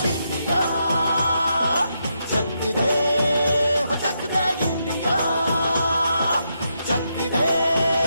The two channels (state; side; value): inverted; both; correlation -0.82